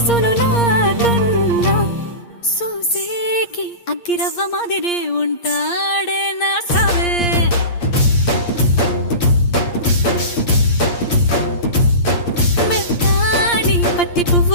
నాకన్నా చూసేకి అగ్గిరవ్వ మాదిరే ఉంటాడే నా సావే. మెత్తాని పత్తి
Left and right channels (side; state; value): right; late; 8.6 ms